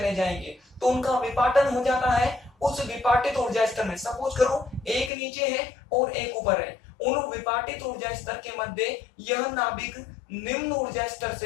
जाएंगे, तो उनका विपाटन हो जाता है। उस विपाटित ऊर्जा स्तर में सपोज करो एक नीचे है और एक ऊपर है, उन विपाटित ऊर्जा स्तर के मध्य यह नाभिक निम्न ऊर्जा स्तर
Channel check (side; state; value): right; drops out; at 5.1 s